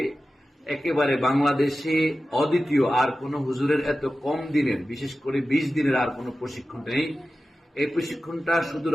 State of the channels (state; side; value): normal; both; correlation 0.94